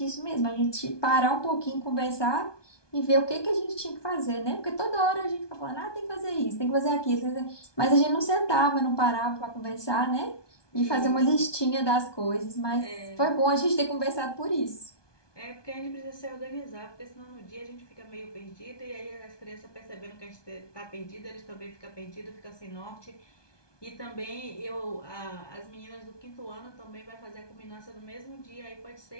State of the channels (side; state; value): right; late; 1.2 ms